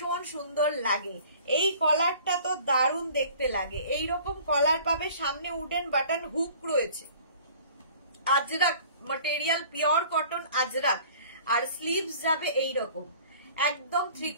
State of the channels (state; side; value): inverted; both; correlation -0.49